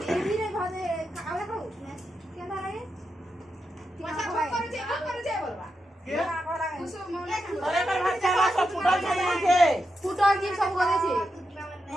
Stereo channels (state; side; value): normal; both; correlation 0.87